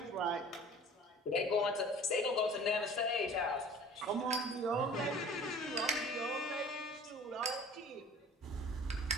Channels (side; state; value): both; normal; correlation 0.45